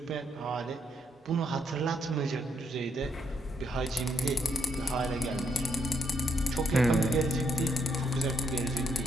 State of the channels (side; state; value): both; normal; correlation 0.74